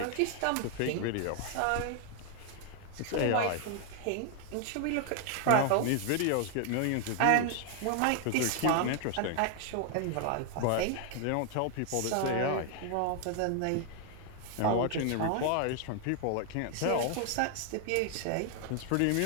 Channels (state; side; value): different; both; correlation 0.00